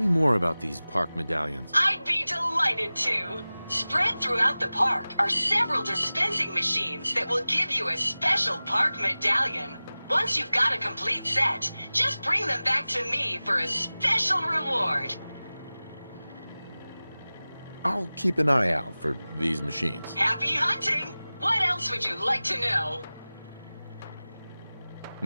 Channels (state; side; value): inverted; both; correlation -0.98